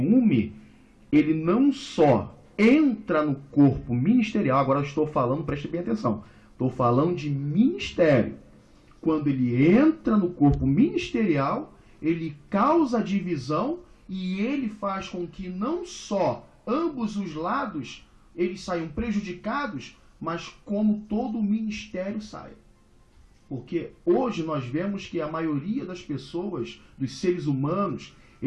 ele não só entra no corpo ministerial, agora eu estou falando, preste bem atenção, estou falando de ministério. Quando ele entra no corpo ministerial, ele causa divisão e ele faz com que não só ambos os lados eles saiam prejudicados, mas como todo o ministério saia. Porque hoje nós vemos que a maioria das pessoas, dos seres humanos,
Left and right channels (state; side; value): identical; both; correlation 1.00